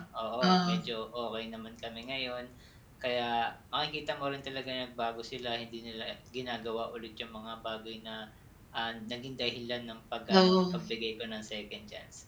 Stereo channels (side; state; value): both; identical; correlation 1.00